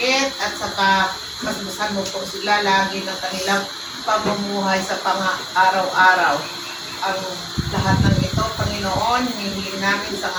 at saka masbusan mo po sila lagi ng kanilang pamumuhay sa pang-araw-araw. Ang lahat ng ito, Panginoon, hinihiling namin sa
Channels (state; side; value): identical; both; correlation 1.00